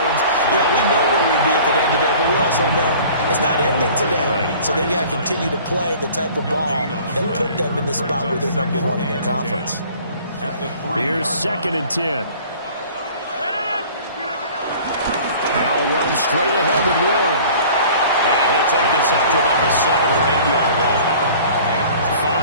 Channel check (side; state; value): both; inverted; correlation -0.47